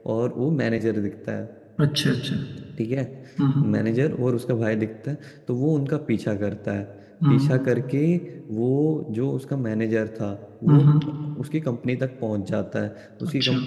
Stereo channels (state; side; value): identical; both; correlation 1.00